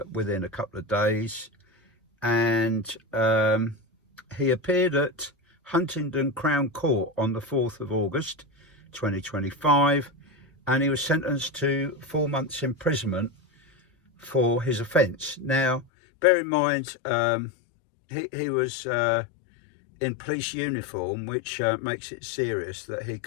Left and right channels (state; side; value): drops out; right; at 15.9 s